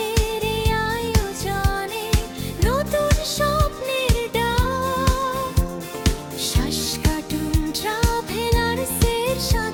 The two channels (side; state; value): both; identical; correlation 1.00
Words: এই আয়োজনে নতুন স্বপ্নের ডাক, শ্বাস কাটুন ট্রাভেলার্সের